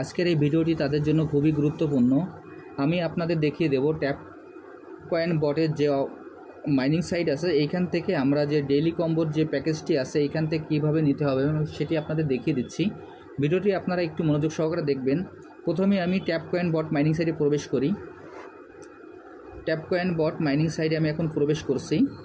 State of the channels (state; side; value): identical; both; correlation 1.00